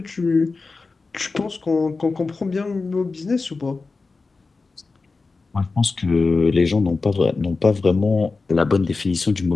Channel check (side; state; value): right; quieter; 4.0 dB